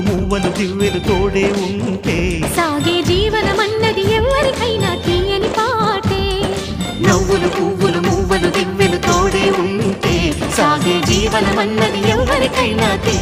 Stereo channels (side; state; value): both; identical; correlation 1.00